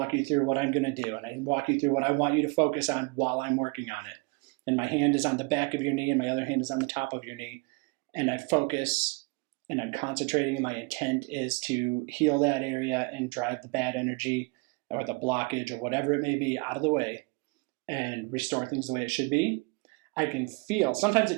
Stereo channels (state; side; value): quieter; left; 30.7 dB